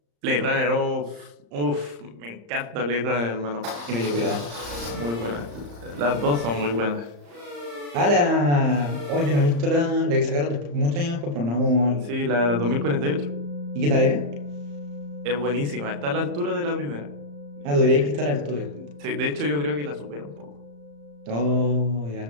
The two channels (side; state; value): left; late; 35 ms